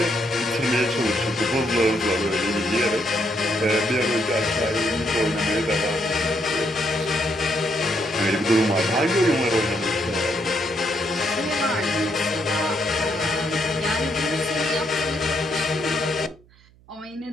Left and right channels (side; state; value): right; noise; hum, 28 dB below the sound